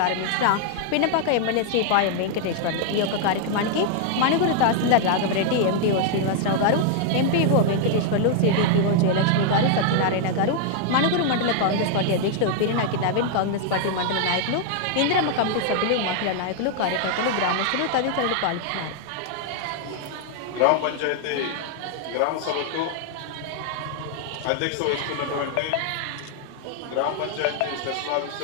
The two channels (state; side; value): different; both; correlation 0.00